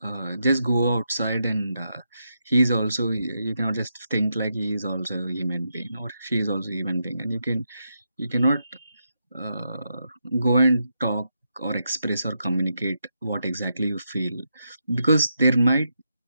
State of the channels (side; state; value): both; inverted; correlation -0.83